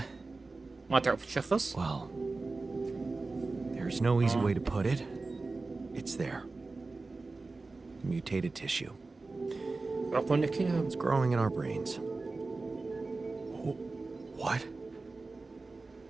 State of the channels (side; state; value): left; quieter; 3.6 dB